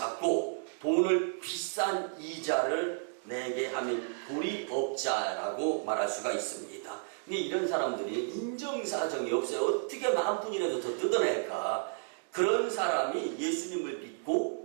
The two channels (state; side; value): silent; left; digital silence